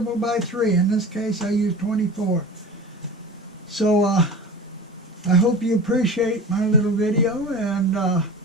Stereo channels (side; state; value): both; normal; correlation 0.35